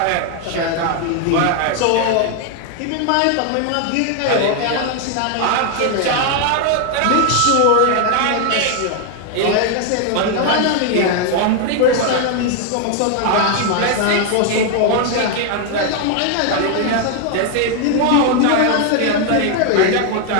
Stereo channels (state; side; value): different; both; correlation 0.00